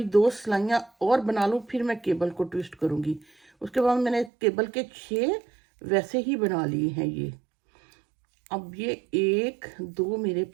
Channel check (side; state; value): left; drops out; at 4.3 s